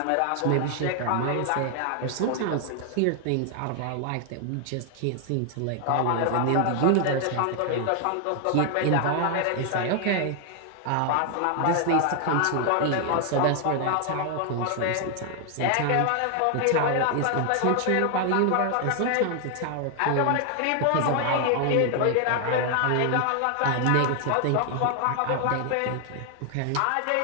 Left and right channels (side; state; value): both; different; correlation 0.00